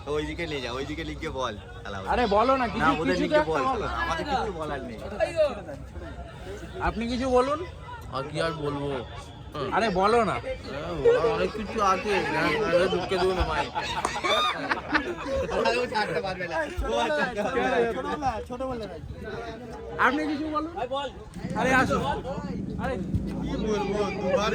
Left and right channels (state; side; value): identical; both; correlation 1.00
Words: ওইদিকে নিয়ে যা, ওইদিকে লিখে বল। আরে বলো না, কিছু ওদের কিছু তো লিখে একটা বল, বলো। আমাদের কিছু বলার নেই। আপনি কিছু বলুন। আর কি আর বলবো, আরে বলো না। অনেক কিছু আছে, ঢুকে দেবো না ভাই। আপনি কিছু বলুন। আরে আসো। আরে কি বলবো, দুবার